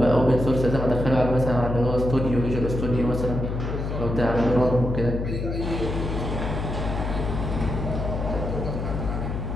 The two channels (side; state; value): left; noise; hum, 3 dB below the sound